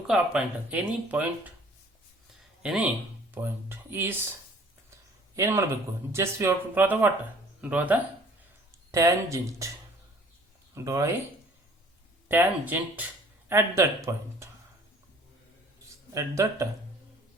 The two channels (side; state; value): both; normal; correlation 0.52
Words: ಆ point. Any point is ಏನು ಮಾಡಬೇಕು, just we have to draw the what, draw the tangent. Draw a tangent at that